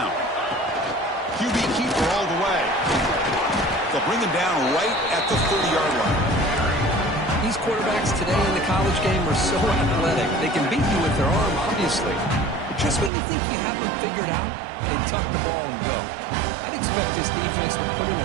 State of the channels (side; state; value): left; drops out; at 13.1 s